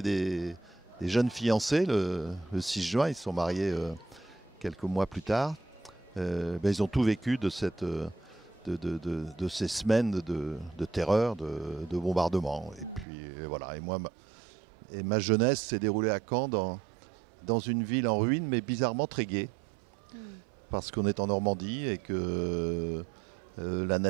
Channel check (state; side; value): drops out; left; at 13.1 s